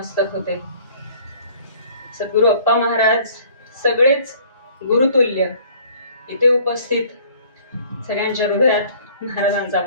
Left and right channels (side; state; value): both; inverted; correlation -0.54